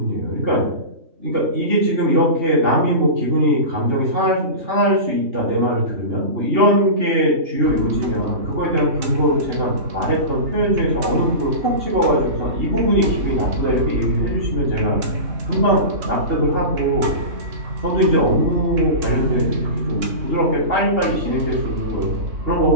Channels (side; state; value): left; late; 3.6 ms